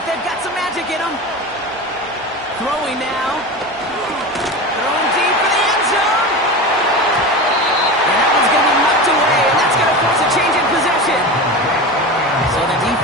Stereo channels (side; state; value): both; normal; correlation 0.27